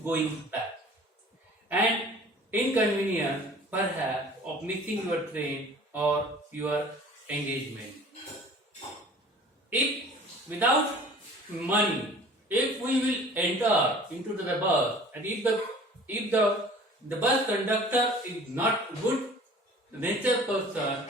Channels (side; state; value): both; normal; correlation 0.47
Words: going back. And inconvenience, perhaps, of missing your train or your engagement. If without money, if we will enter into the bus, and if the bus conductor is not good nature person,